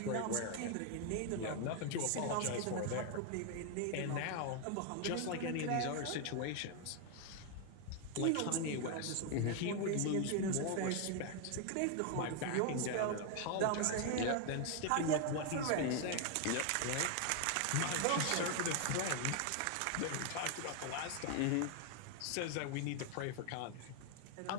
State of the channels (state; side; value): different; both; correlation 0.00